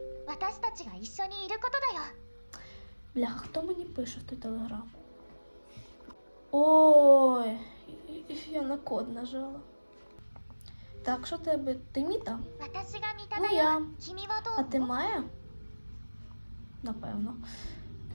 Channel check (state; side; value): inverted; both; correlation -1.00